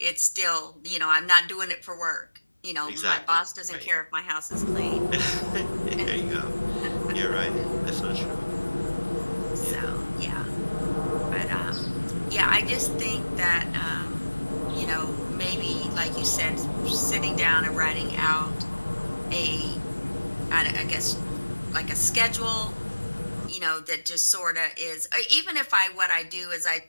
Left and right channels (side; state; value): both; inverted; correlation -1.00